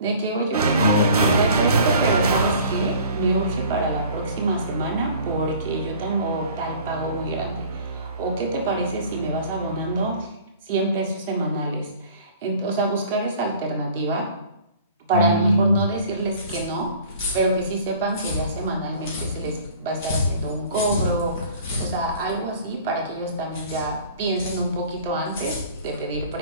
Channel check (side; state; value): both; inverted; correlation -0.48